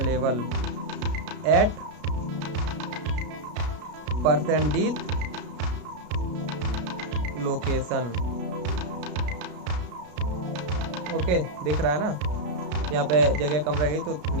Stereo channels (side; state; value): left; late; 33 ms